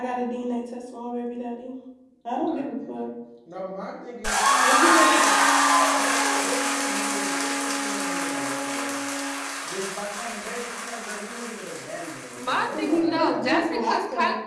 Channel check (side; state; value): both; identical; correlation 1.00